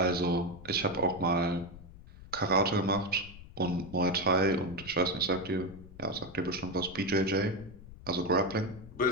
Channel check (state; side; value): noise; left; rumble, 17 dB below the sound